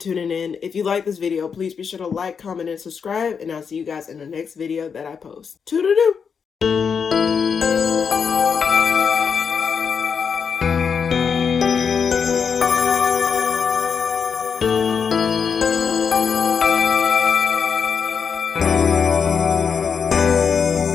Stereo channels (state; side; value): quieter; right; 6.4 dB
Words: in. If you like this video, please be sure to like, comment, and subscribe, and I'll see you guys in the next video that I post. Toodaloo!